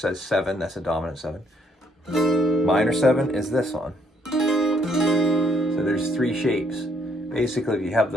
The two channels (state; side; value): normal; both; correlation 0.69